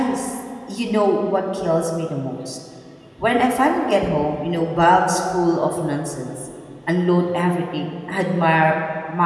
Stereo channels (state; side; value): identical; both; correlation 1.00